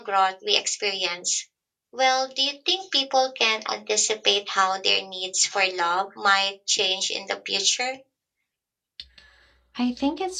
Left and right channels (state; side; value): identical; both; correlation 1.00